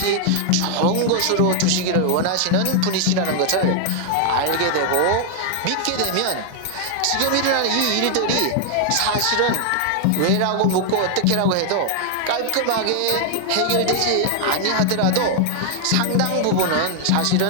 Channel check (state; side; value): different; both; correlation 0.00